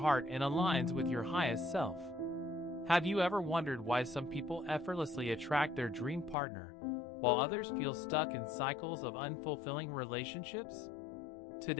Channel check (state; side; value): drops out; right; at 6.4 s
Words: and aligns with your highest self. Have you ever wondered why some people effortlessly attract their dream partner, while others feel stuck in cycles of unfulfilling relationships?